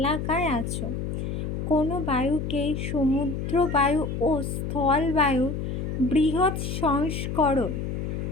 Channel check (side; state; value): left; noise; hum, 3 dB below the sound